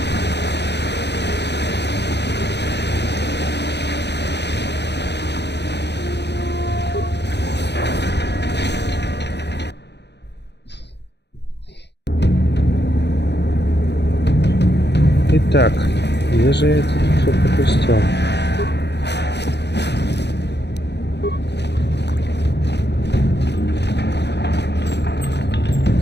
Итак, где же я это все пропустил?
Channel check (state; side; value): late; right; 0.50 ms